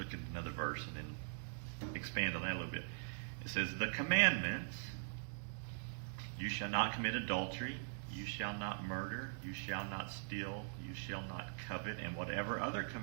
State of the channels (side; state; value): left; silent; digital silence